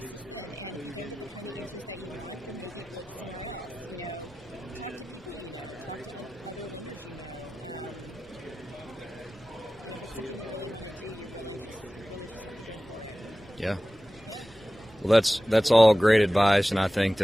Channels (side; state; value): both; normal; correlation 0.96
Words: Yeah. Well, that's all great advice, and I think